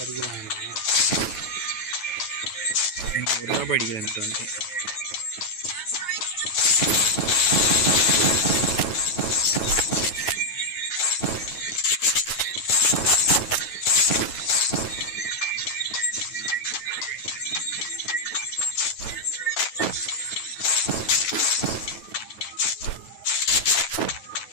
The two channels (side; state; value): right; late; 9.3 ms